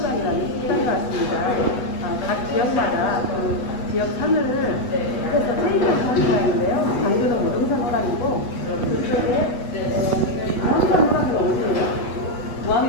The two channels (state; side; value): late; right; 8.2 ms